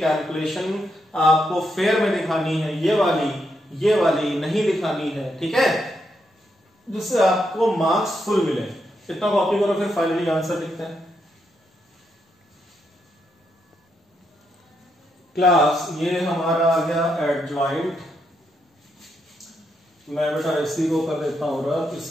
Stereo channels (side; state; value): both; normal; correlation 0.80